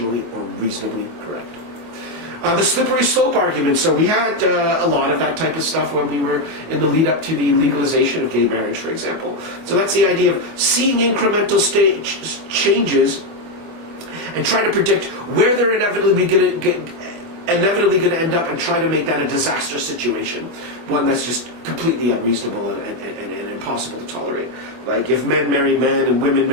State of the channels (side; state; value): left; late; 24 ms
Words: or reasonably correct. The slippery slope argument. So we had a lot of that type of stuff when we were in the lead up to the legalization of gay marriage, for example. So that's the idea of seeing incremental changes and trying to predict where they're inevitably going to end up and try to make that a disaster situation, one that's just completely unreasonable and impossible to tolerate. Like if men marry men and women